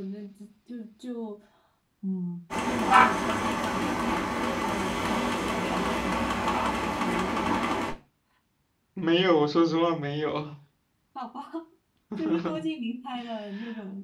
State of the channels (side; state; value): both; identical; correlation 1.00